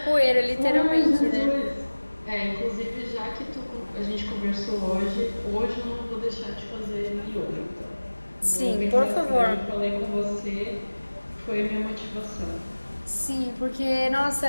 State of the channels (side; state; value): both; inverted; correlation -1.00